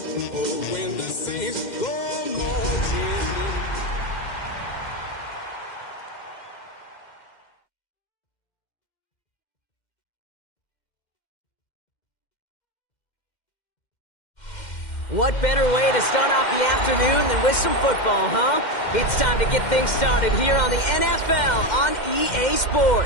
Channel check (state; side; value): late; right; 2.1 ms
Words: Oh, when the saints go marching in. What better way to start off the afternoon than with some football, huh? It's time to get things started here on the NFL on EA